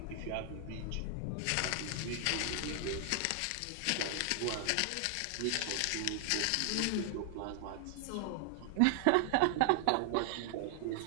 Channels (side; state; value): both; different; correlation 0.00